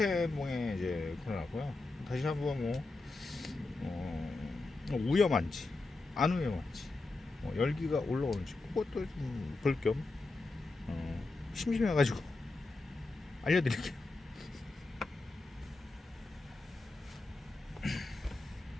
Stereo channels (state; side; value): quieter; right; 3.3 dB